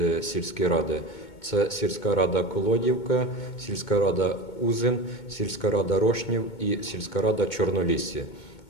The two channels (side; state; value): right; late; 2.2 ms